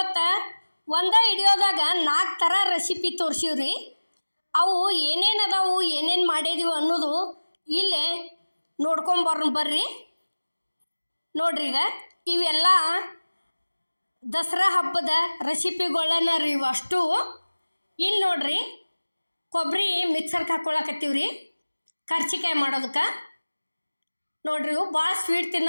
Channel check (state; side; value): inverted; both; correlation -1.00